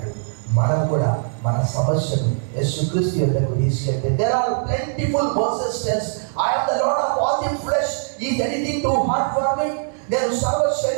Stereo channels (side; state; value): left; silent; digital silence